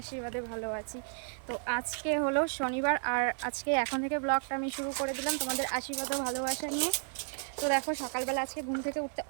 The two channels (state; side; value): silent; left; 56 dB below the other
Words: ভালো আছি। তো আজকে হলো শনিবার, আর আজকে এখন থেকে ব্লগটা আমি শুরু করে দিলাম তোমাদের আশীর্বাদ ও ভালোবাসা নিয়ে। তো দেখো সকালবেলা আজকে ঘুম থেকে উঠতে